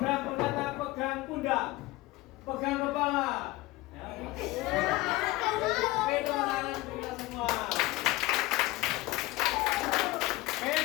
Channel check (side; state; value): right; quieter; 19.4 dB